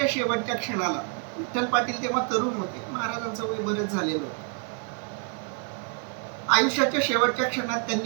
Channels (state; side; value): quieter; left; 37.5 dB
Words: शेवटच्या क्षणाला विठ्ठल पाटील तेव्हा तरुण होते, महाराजांचं वय बरेच झालेलं होतं. आयुष्याच्या शेवटच्या क्षणात